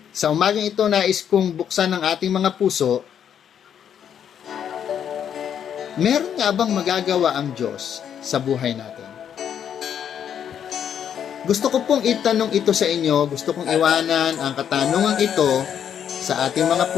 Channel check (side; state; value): right; quieter; 8.8 dB